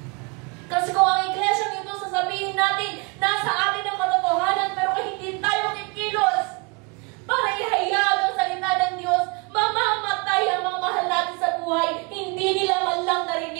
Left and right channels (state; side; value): quieter; left; 30.7 dB